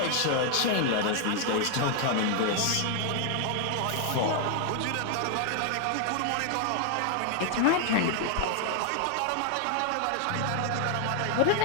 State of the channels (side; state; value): both; different; correlation 0.00